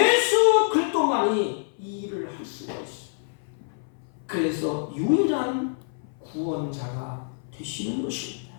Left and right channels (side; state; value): right; silent; 58 dB below the other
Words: 그리스도만이 이 일을 할 수가 있어요. 그래서 유일한 구원자가 되시는 것입니다.